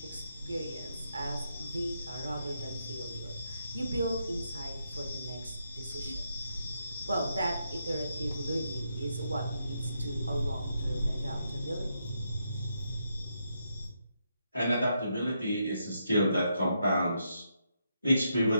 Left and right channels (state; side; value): inverted; both; correlation -0.80